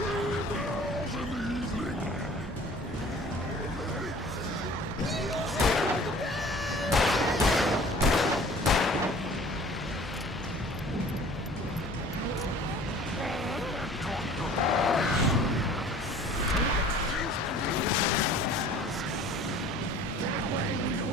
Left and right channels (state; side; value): normal; both; correlation 0.48